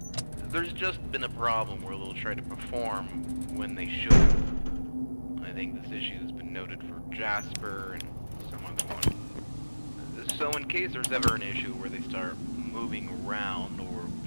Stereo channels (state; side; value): inverted; both; correlation -1.00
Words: There's just been a problem where they'll try to perform when they shouldn't. I think this issue has been noted for Jasper and some other one. So in case there's ever an issue where they start moving around or